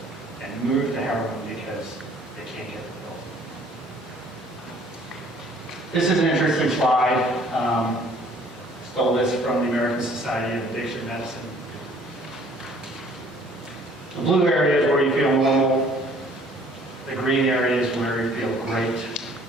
and move to heroin because they can't get the pills. This is an interesting slide. Stole this from the American Society of Addiction Medicine. The blue area is where you feel normal. The green area is where you feel great.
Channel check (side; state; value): both; normal; correlation 0.57